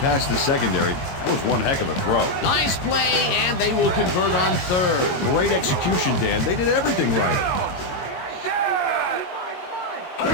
the secondary. That was one heck of a throw. Nice play, and they will convert on 3rd. Great execution, Dan. They did everything right.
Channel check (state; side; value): late; right; 22 ms